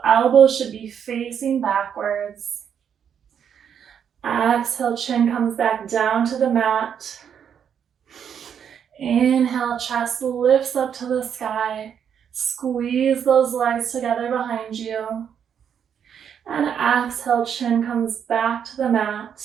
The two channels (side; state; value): left; quieter; 8.1 dB